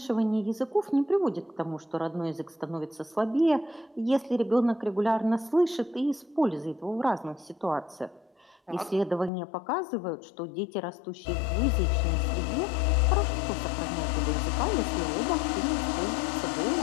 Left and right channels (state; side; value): drops out; right; at 9.3 s